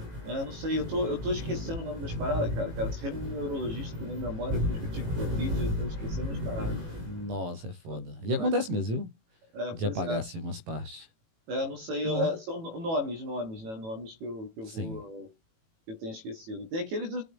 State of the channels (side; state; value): left; late; 18 ms